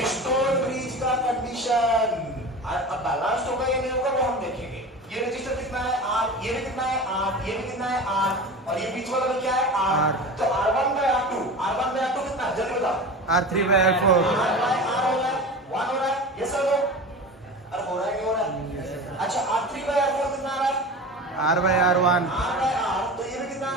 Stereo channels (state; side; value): normal; both; correlation 0.32